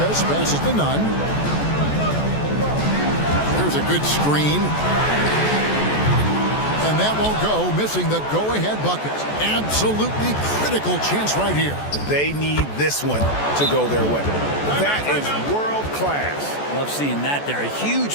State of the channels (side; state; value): right; late; 14 ms